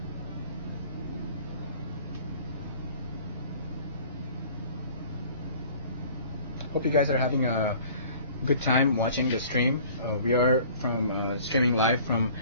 Hope you guys are having a good time watching the stream. We are streaming live from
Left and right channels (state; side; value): inverted; both; correlation -0.49